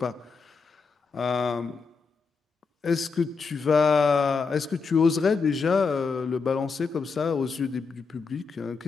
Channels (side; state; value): right; quieter; 4.9 dB